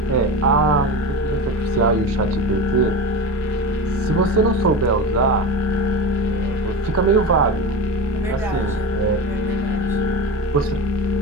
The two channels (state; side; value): normal; both; correlation 0.26